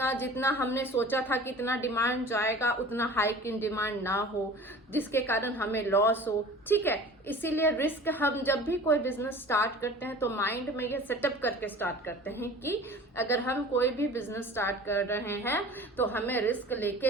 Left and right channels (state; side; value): normal; both; correlation 0.42